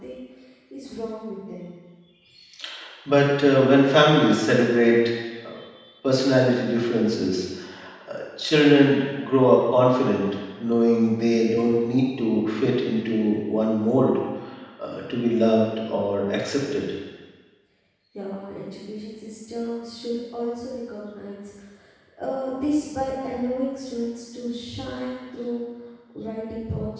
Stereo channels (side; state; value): both; identical; correlation 1.00